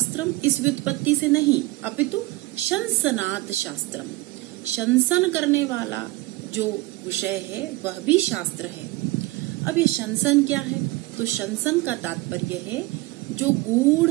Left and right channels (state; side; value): quieter; left; 20.6 dB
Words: इस व्युत्पत्ति से नहीं, अपितु शंसनात् शास्त्रम, शंसन करने वाला जो विषय है वह भी शास्त्र है। अब ये शंसन क्या है? तो शंसन का तात्पर्य है जो गूढ़